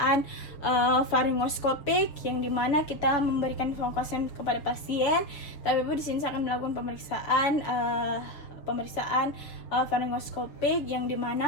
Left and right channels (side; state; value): right; late; 7.0 ms